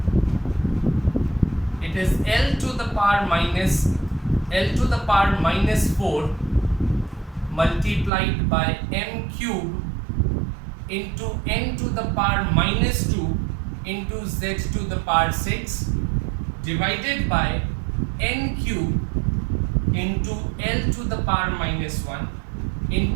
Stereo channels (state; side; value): drops out; left; at 8.1 s